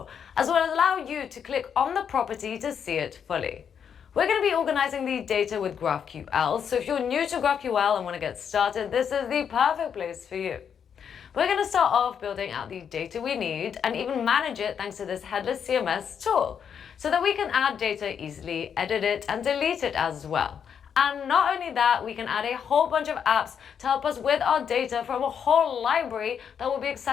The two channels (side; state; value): right; quieter; 7.7 dB